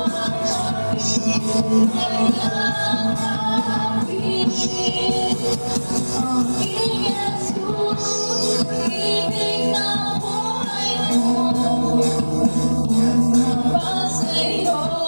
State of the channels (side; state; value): both; inverted; correlation -1.00